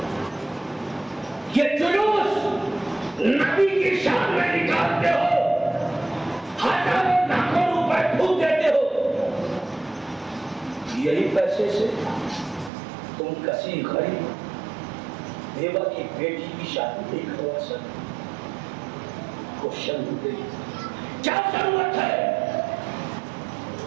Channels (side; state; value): left; drops out; at 12.7 s